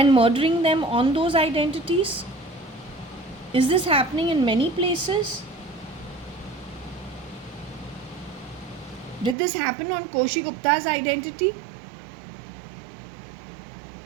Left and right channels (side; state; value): left; drops out; at 9.3 s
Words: murdering them on those identities? Is this happening in many places? Did this happen on Koshi Gupta's identity?